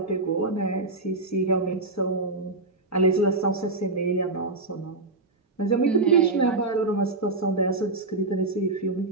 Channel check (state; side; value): quieter; left; 3.2 dB